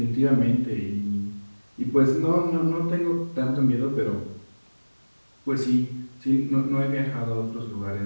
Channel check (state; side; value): inverted; both; correlation -1.00